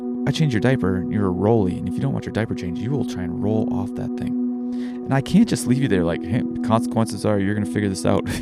I changed your diaper and you're a rolly. And if you don't want your diaper changed, you will try and roll off that thing. And I can't just leave you there like, hey, the consequences are you're going to figure this out. If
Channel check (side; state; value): both; identical; correlation 1.00